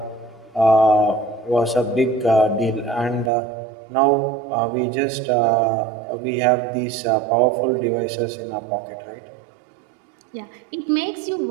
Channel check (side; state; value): left; drops out; at 3.3 s